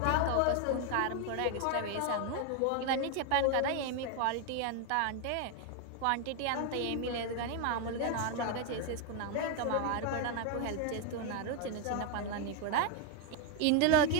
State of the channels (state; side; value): different; both; correlation 0.01